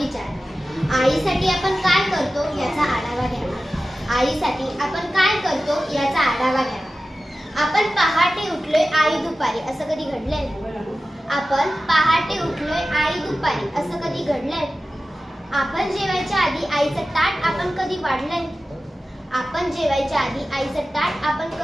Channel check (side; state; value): both; normal; correlation 0.95